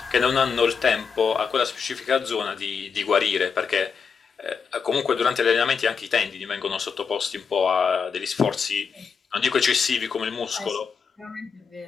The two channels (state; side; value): quieter; right; 5.9 dB